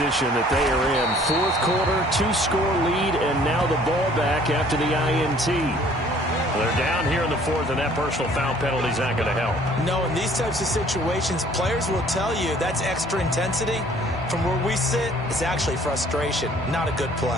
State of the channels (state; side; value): normal; both; correlation 0.56